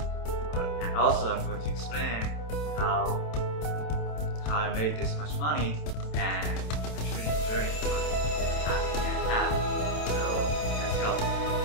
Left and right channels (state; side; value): late; right; 27 ms